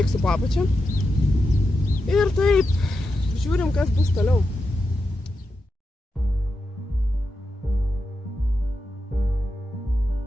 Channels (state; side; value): normal; both; correlation 0.88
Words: po apačia. Ir taip, žiūrim, kas bus toliau.